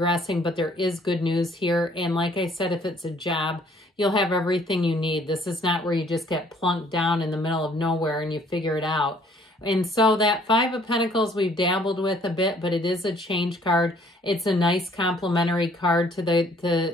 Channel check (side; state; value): both; normal; correlation 0.60